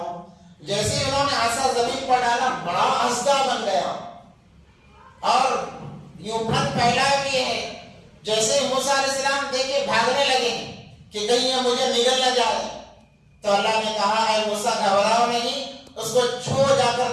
جیسے ہی انہوں نے عصا زمین پر ڈالا بڑا اژدھا بن گیا اور یوں پھن پھیلائے ہوئے ہے۔ جیسے موسیٰ علیہ السلام دیکھے بھاگنے لگے کہ کہیں یہ مجھے نگل نہ جائے، تو اللہ نے کہا اے موسیٰ گھبراؤ نہیں، اس کو چھو جا کر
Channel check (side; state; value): both; identical; correlation 1.00